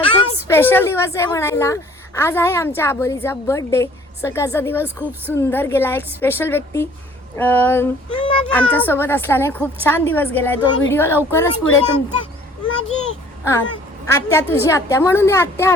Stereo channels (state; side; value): normal; both; correlation 0.54